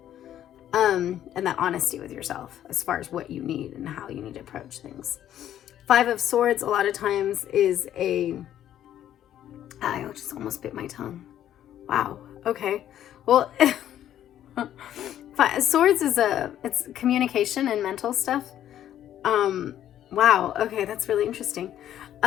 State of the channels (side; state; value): right; quieter; 11.3 dB